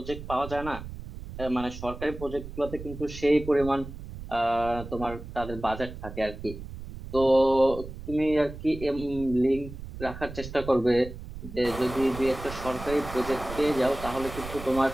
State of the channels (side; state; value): right; noise; rumble, 11 dB below the sound